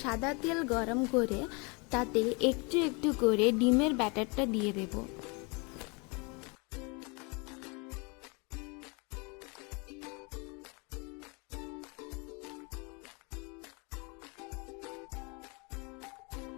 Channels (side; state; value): right; quieter; 30.7 dB